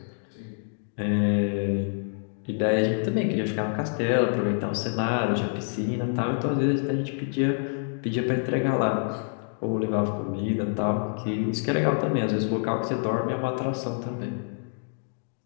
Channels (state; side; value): silent; right; digital silence